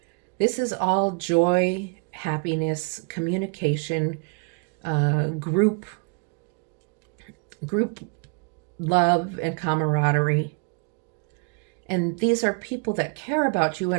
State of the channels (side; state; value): left; quieter; 34.7 dB